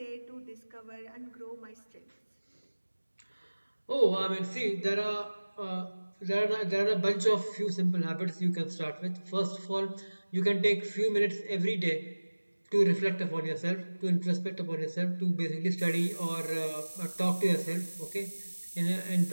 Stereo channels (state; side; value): inverted; both; correlation -1.00